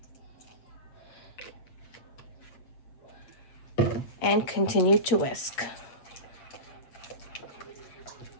And continue to whisk.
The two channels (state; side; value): late; right; 8.4 ms